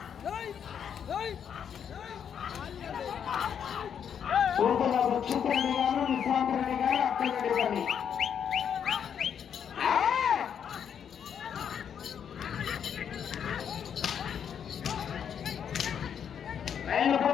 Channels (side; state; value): right; quieter; 8.1 dB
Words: పూర్తిగా దక్షిణరెడ్డి గారు, నిశాంత్ రెడ్డి గారు, అక్కలరెడ్డిపల్లి